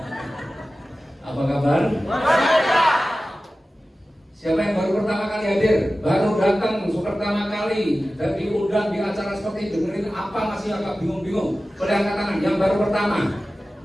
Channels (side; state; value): both; normal; correlation 0.95